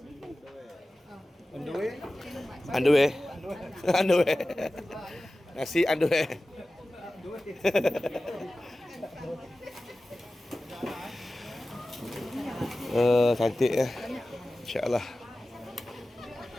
On the way. Nasi on the way. Cantik ya. InsyaAllah.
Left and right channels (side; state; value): both; normal; correlation 0.96